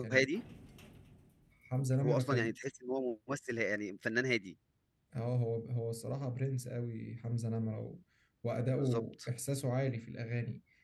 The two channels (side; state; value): both; identical; correlation 1.00